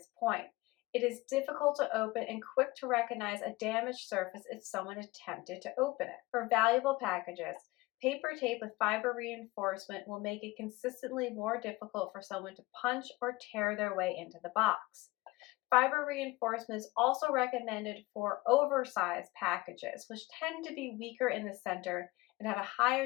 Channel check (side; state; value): right; quieter; 20.8 dB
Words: point. It is difficult to open and quick to recognize a damaged surface if someone attempted to open it. For valuable packages, paper tape with fiber reinforcement will make it consistently more difficult for someone to punch or tear their way into the box. Fiber reinforcement is also recommended for oversized packages, which tend to be weaker in the center and have a